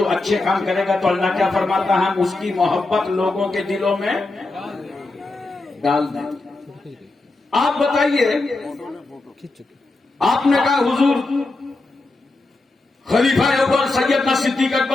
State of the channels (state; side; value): quieter; right; 3.2 dB